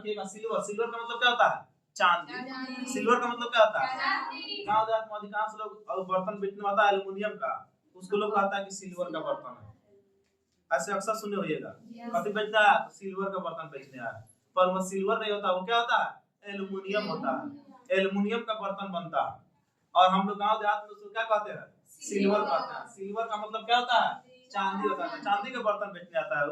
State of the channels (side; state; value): both; identical; correlation 1.00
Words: सिल्वर, सिल्वर का मतलब क्या होता है, चांदी, सिल्वर का मतलब क्या होता है, गांव देहात में अधिकांश लोग बर्तन बेचने वाला एल्युमिनियम का, उसको लोग कहता है कि सिल्वर का बर्तन है, ऐसे अक्सर सुने होइएगा, कभी बेचता है तो सिल्वर का बर्तन बेचने आया, पर वो सिल्वर नहीं होता, वो क्या होता है, एल्युमिनियम होता है, एल्युमिनियम का बर्तन बनता है, और हम लोग गांव देहात में उसको क्या कहते हैं, सिल्वर कहते हैं। सिल्वर का मतलब क्या होता है, चांदी होता है, चांदी का बर्तन बेचने आता है,